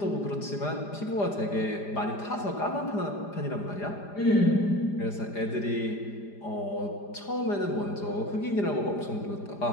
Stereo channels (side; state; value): right; late; 5.0 ms